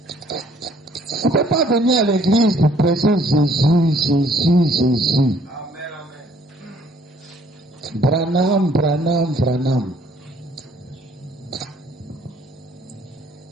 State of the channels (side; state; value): both; normal; correlation 0.61